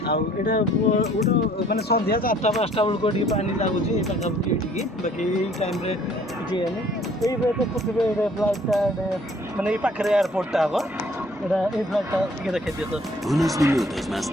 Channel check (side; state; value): both; normal; correlation 0.58